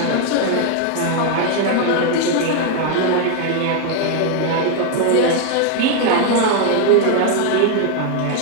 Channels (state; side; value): different; both; correlation 0.01